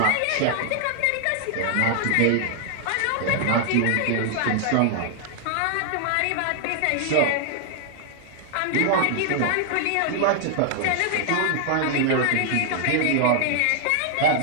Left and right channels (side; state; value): both; different; correlation 0.00